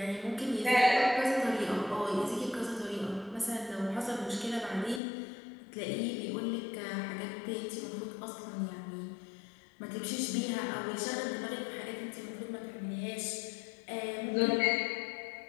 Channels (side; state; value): right; drops out; at 5.0 s